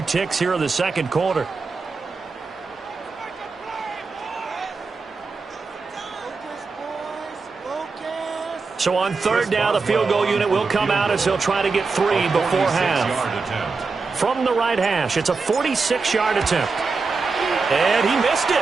ticks here in the 2nd quarter. So on 3rd down, the field goal unit will come out as they'll try to get 3 before half. From the right hash, it's a 46-yard attempt. And he missed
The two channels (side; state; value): left; quieter; 4.4 dB